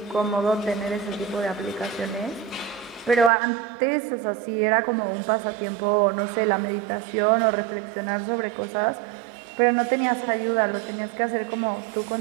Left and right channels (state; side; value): drops out; left; at 3.3 s